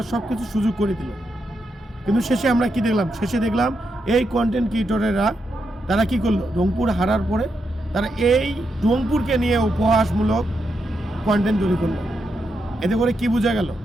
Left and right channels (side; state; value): both; normal; correlation 0.83